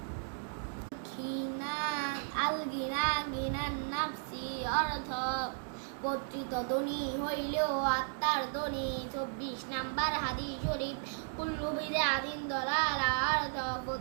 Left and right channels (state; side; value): silent; left; digital silence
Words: গিনান নাফসি অর্থ কর্তৃত্ব ধনী হইলেও আত্মার ধনী। 24 নাম্বার হাদিস শরীফ কুল্লু বিদআতিন দালালা অর্থ